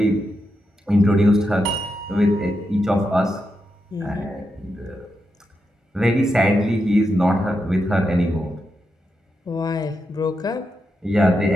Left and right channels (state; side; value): normal; both; correlation 0.85